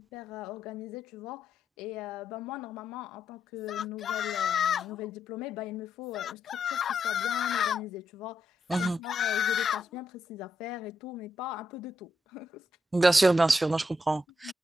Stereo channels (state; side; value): normal; both; correlation 0.81